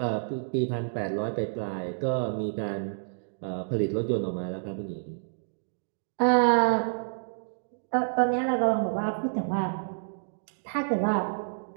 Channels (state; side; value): silent; left; digital silence